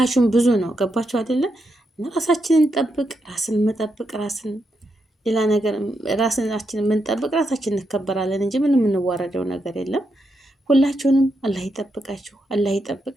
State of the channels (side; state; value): both; normal; correlation 0.83